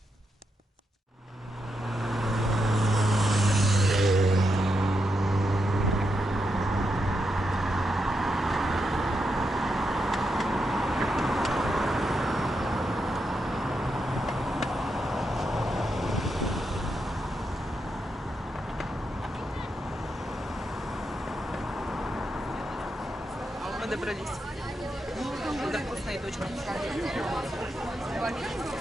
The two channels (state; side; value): normal; both; correlation 0.84